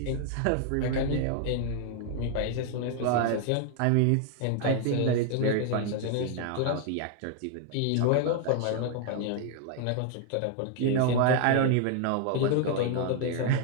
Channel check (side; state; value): both; different; correlation 0.00